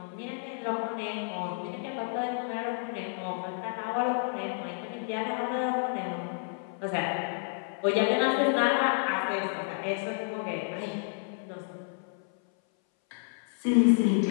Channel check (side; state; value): right; silent; 58 dB below the other